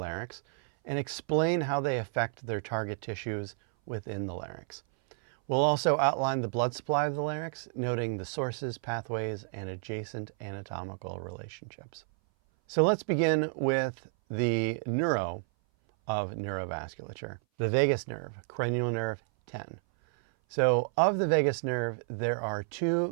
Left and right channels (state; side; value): silent; left; 57 dB below the other